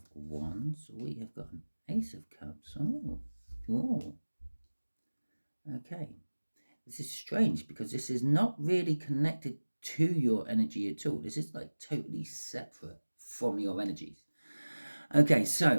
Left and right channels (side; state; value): both; inverted; correlation -1.00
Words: Wands. We have got an Ace of Cups. Oh. Okay. This is strange because this is not really connected to your energy at all. This is like totally separate from your energies. Okay,